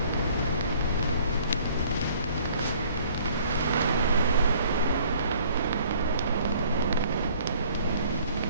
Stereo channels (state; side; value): inverted; both; correlation -0.55